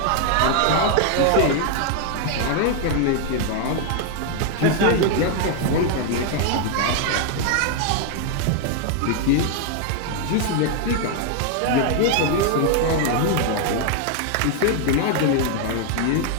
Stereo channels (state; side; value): different; both; correlation 0.00